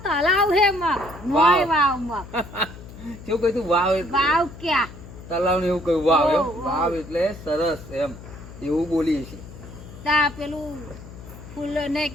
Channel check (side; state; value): left; noise; hum, 15 dB below the sound